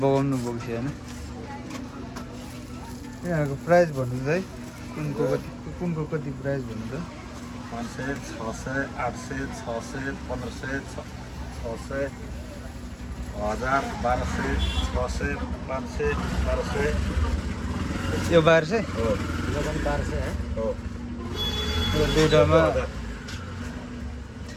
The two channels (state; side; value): identical; both; correlation 1.00